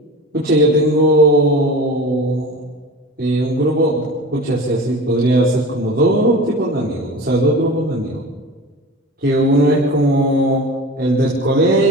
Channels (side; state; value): both; normal; correlation 0.35